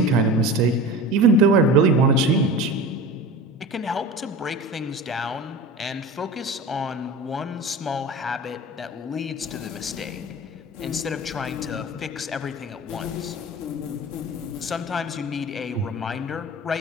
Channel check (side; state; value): both; normal; correlation 0.33